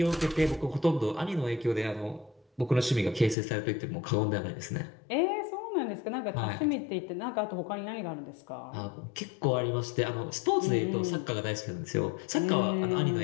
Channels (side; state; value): right; drops out; at 3.4 s